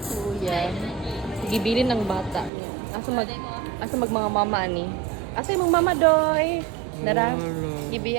Kuya. Gibilin ng bata niya. Asa mag mga mama ni. Asa yung mama doy? Dara.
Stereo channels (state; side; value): drops out; left; at 2.5 s